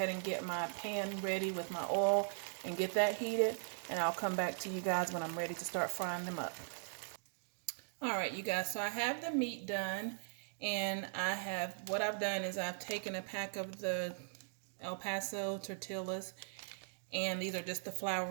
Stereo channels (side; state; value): left; silent; digital silence